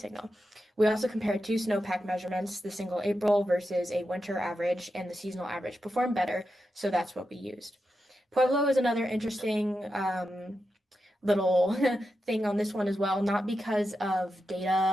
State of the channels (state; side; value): normal; both; correlation 0.89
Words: We also compared two snowpack measurements, the single April versus a winter average, and the seasonal average performed better, so that's what we used. Pueblo is another interesting little thing on this one as well, not because of